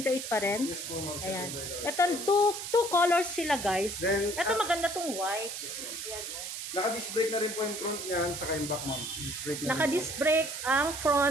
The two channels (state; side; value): noise; right; hiss, 6 dB below the sound